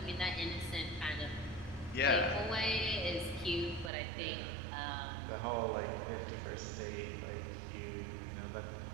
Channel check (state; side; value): drops out; left; at 3.9 s